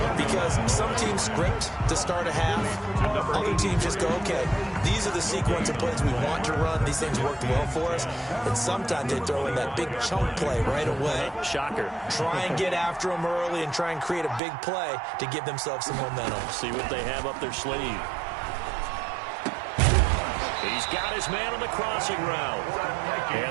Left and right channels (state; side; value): drops out; left; at 14.4 s